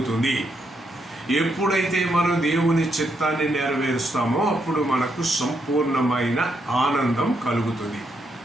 ఎప్పుడైతే మనం దేవుని చిత్తాన్ని నెరవేరుస్తామో అప్పుడు మనకు సంపూర్ణమైన ఆనందం కలుగుతుంది.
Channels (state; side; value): normal; both; correlation 0.79